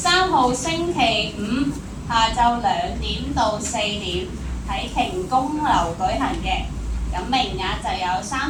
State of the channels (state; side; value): identical; both; correlation 1.00